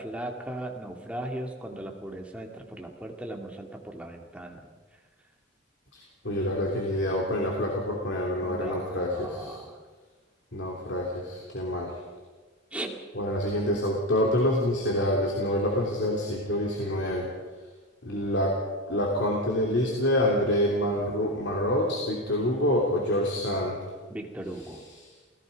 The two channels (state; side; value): normal; both; correlation 0.17